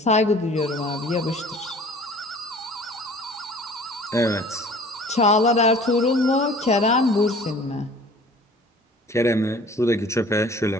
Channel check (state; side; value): normal; both; correlation 0.48